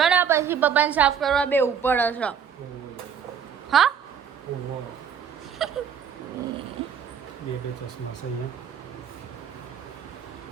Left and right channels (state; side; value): quieter; left; 7.5 dB